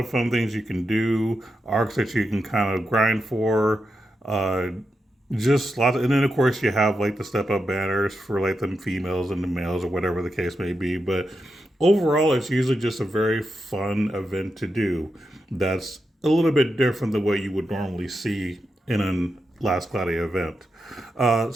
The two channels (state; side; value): normal; both; correlation 0.87